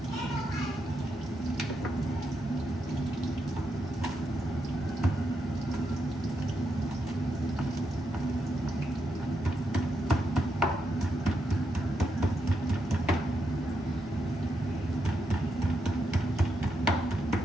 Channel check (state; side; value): normal; both; correlation 0.83